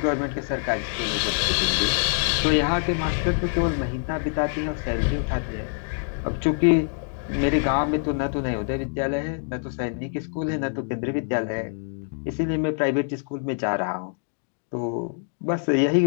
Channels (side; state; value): right; silent; digital silence